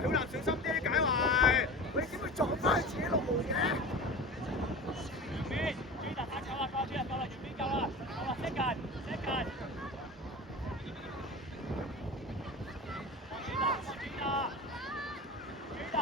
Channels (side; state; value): both; normal; correlation 0.33